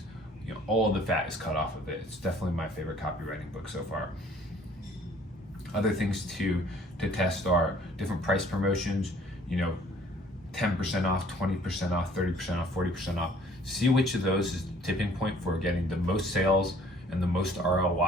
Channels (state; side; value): normal; both; correlation 0.56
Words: all of the fat is cut off of it. It's definitely my favorite copywriting book so far. Other things to test are different price promotions, 10% off, 20% off, 30% off, 40% off. See which of those is the tipping point for getting the most sales and the most